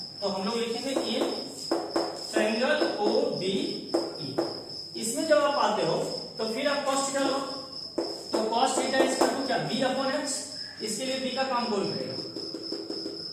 तो हम लोग लिखेंगे in triangle O B E. इसमें जब आप आते हो तो फिर आप कॉस थीटा लो, तो कॉस थीटा इसका तो क्या बी अपॉन एच, इसके लिए बी का काम कौन करेगा,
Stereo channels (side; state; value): both; identical; correlation 1.00